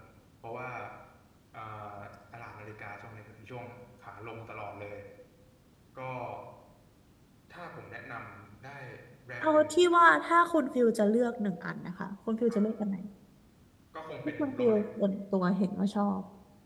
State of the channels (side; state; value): both; identical; correlation 1.00